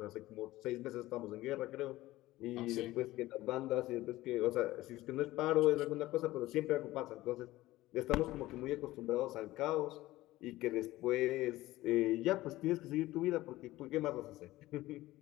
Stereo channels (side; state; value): right; quieter; 17.2 dB